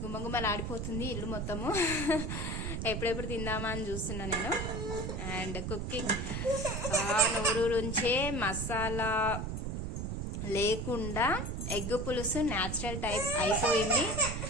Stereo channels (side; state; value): right; noise; rumble, 3 dB below the sound